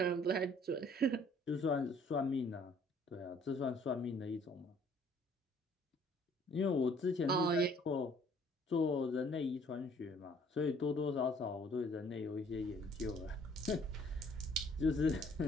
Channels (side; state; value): both; normal; correlation 0.59